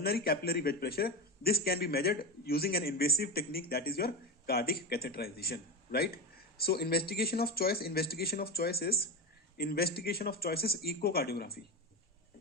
capillary wedge pressure, this can be measured using an invasive technique, that is your cardiac catheterization. Right. So investigation of choice is echocardiography.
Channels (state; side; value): normal; both; correlation 0.17